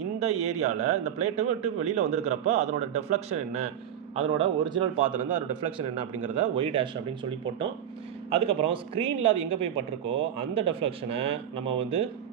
இந்த ஏரியாவில் இந்த பிளேட்டை விட்டு வெளியில் வந்திருக்கிறப்போ அதனோட டெஃப்ளெக்ஷன் என்ன, அதனோட ஒரிஜினல் பாத்துலேருந்து அதோட டெஃப்ளெக்ஷன் என்ன அப்படிங்கிறத y' அப்படின்னு சொல்லி போட்டோம். அதுக்கப்புறம் ஸ்க்ரீனில் அது எங்கே போய் பட்டிருக்கோ அந்த டெஃப்ளெக்ஷனை நம்ம வந்து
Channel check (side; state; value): left; quieter; 9.8 dB